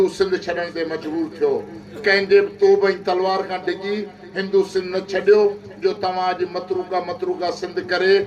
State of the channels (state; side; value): identical; both; correlation 1.00